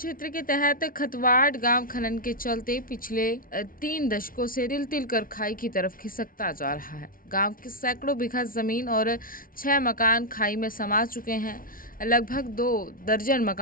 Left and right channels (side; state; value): right; late; 0.41 ms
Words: के तहत खतवाड़ गांव खनन के चलते पिछले 3 दशकों से तिल तिल कर खाई की तरफ खिसकता जा रहा है। गांव के सैकड़ों बीघा जमीन और 6 मकान खाई में समा चुके हैं। लगभग 2 दर्जन